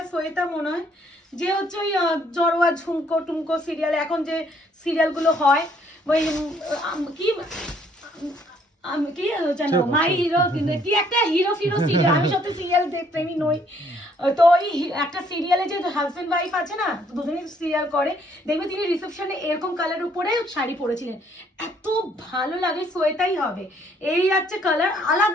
সোয়েতা মনে হয় যে হচ্ছে ওই জড়োয়া ঝুমকো টুমকো সিরিয়াল, এখন যে সিরিয়ালগুলো হয় ওই কি আমি কি জানো মাই হিরো, কিন্তু কি একটা হিরো ফিরো সিরিয়াল, আমি সত্যি সিরিয়াল প্রেমী নই। তো ওই একটা সিরিয়ালে যে হাজবেন্ড ওয়াইফ আছে না, দুজনেই সিরিয়াল করে, দেখবে তিনি রিসেপশনে এরকম কালার উপরে শাড়ি পরেছিলেন, এত ভালো লাগে। সোয়েতাই হবে। এই আছে কালার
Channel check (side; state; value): both; normal; correlation 0.65